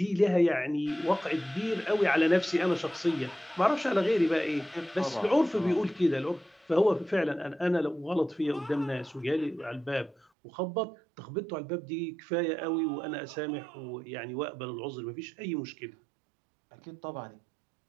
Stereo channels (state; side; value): drops out; left; at 10.2 s